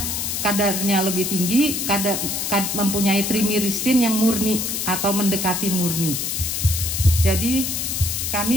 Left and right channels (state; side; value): noise; left; hiss, 2 dB below the sound